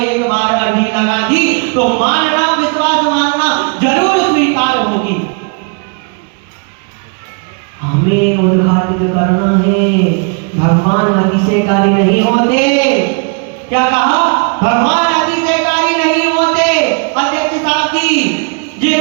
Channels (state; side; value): quieter; left; 37.0 dB